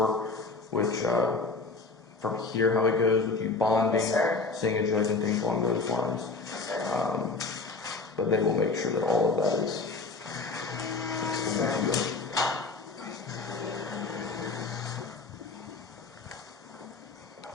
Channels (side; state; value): right; quieter; 3.9 dB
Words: which, from here, how it goes with you bonding, seeing a judge, and things along those lines. But they will make sure that all of that is explained to you.